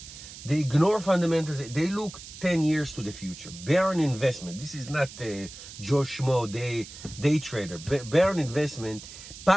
They ignore fundamentals. They look 10 years to the future. Bear an investment. This is not a Joe Schmo day trader. Bear an investment,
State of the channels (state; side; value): noise; right; hiss, 15 dB below the sound